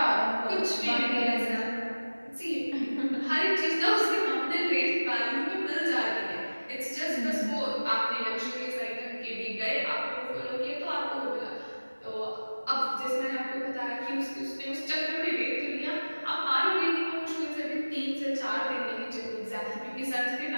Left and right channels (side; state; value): both; inverted; correlation -1.00